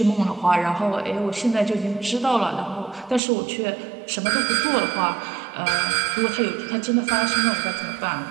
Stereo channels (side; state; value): left; drops out; at 3.2 s